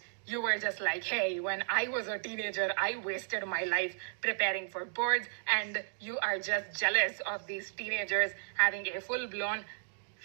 you were just like, hey, when I was a teenager, I wasted my life preparing for boards, and you are just jealous of these teenagers having a full-blown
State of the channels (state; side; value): silent; left; digital silence